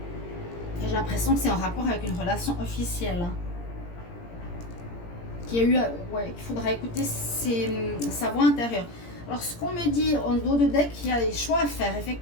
J'ai l'impression que c'est en rapport avec une relation officielle. Qu'il faudra écouter sa voix intérieure. Alors, ce qu'on me dit en dos de deck, il y a des choix à faire,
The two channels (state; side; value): late; right; 17 ms